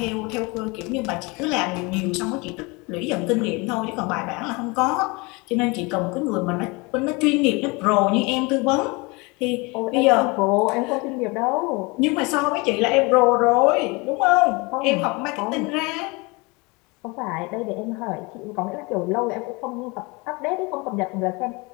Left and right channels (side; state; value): right; quieter; 26.8 dB